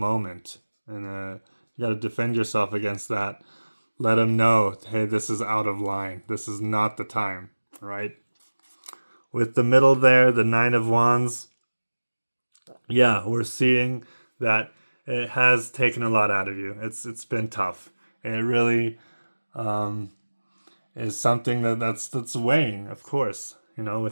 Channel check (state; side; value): inverted; both; correlation -1.00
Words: and you got to defend yourself against that. Let them know, hey, this is out of line. This is not the time, right? With the middle there, the 9 of Wands, yeah, we're seeing that it has taken a lot out of you. It's been tough. It really is something that's weighing, of course,